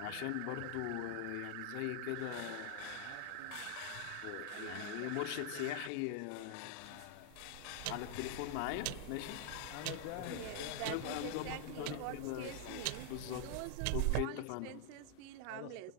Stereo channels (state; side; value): different; both; correlation 0.00